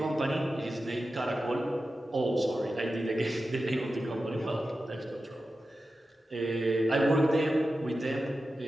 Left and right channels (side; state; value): both; normal; correlation 0.92